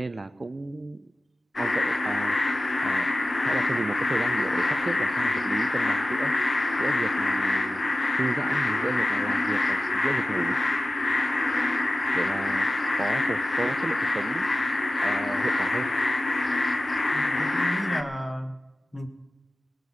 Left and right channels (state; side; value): normal; both; correlation 0.95